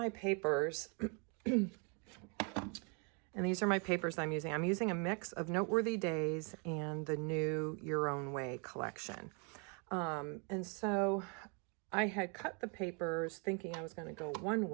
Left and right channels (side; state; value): left; quieter; 36.0 dB